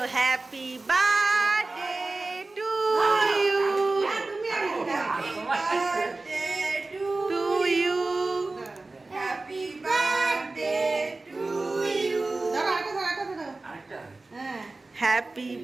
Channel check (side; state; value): left; quieter; 3.3 dB